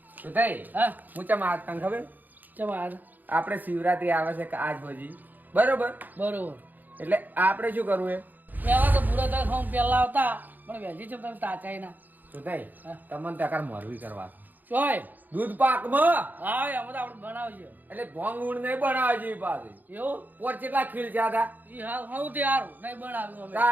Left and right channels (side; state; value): left; late; 0.085 ms